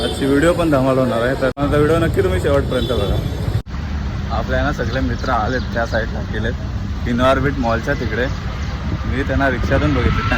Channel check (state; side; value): identical; both; correlation 1.00